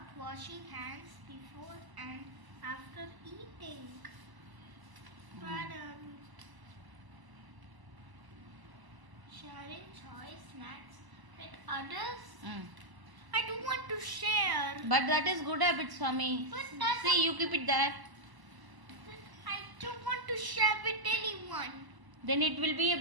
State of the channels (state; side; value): late; left; 1.0 ms